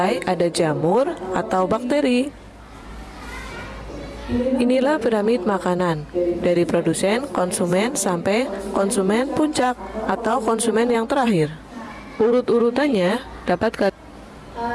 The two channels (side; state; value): both; identical; correlation 1.00